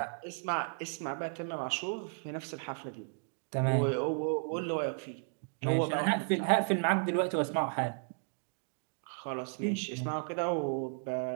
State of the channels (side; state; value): left; silent; 55 dB below the other